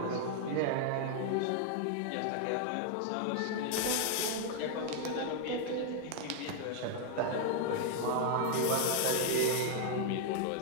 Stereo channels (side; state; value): both; different; correlation 0.00